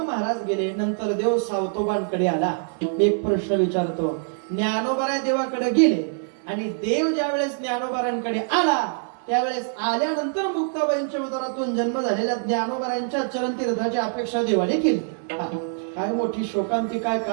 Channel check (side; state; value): left; silent; 62 dB below the other